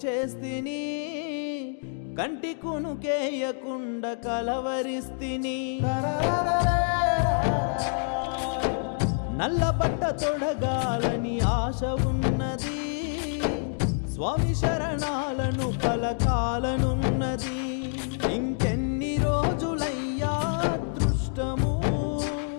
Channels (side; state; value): right; silent; 60 dB below the other